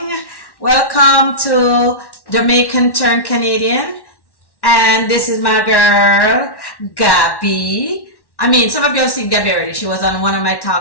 Welcome to Jamaican Turn Canadian. And this is my girl, Gabby. Some of you have seen Gabby already. She was on one of my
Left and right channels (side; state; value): right; late; 1.1 ms